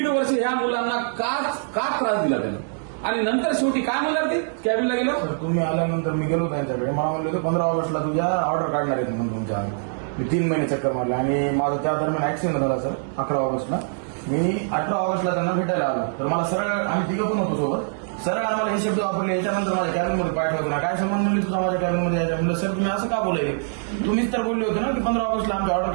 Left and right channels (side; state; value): left; silent; digital silence